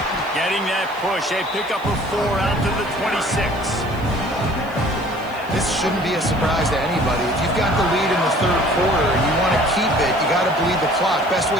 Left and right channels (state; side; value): noise; right; hiss, 25 dB below the sound